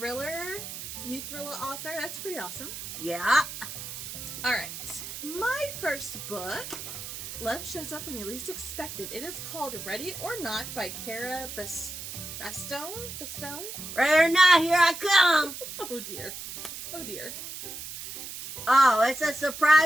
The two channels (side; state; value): right; noise; hiss, 9 dB below the sound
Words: new thriller author, that's pretty awesome. Yeah. Alright, my first book, Love Shows Up When You Least Expect It. It is called Ready or Not by Cara Bastone? Ready or not, here I come. Oh dear. Oh dear. Oh, it's a